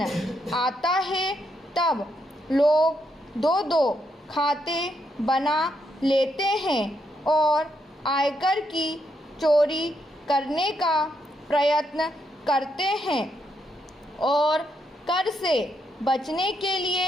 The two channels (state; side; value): normal; both; correlation 0.78